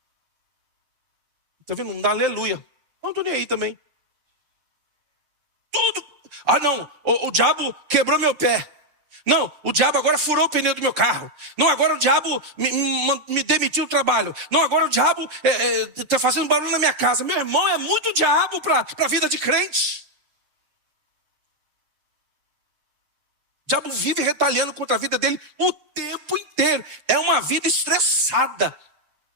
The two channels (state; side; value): late; left; 7.0 ms